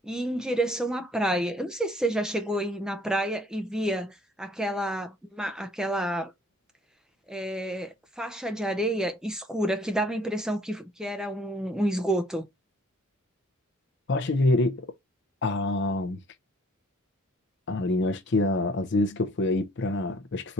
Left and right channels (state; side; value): normal; both; correlation 0.59